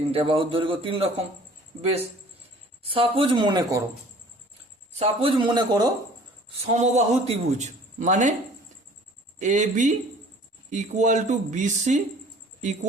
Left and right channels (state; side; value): normal; both; correlation 0.50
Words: বাহুর দৈর্ঘ্য 3 রকম। বেশ, সাপোজ মনে করো সমবাহু ত্রিভুজ, মানে A B equal to B C